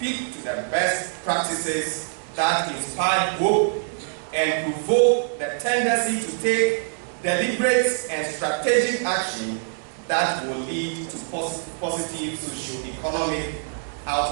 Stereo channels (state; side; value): silent; left; digital silence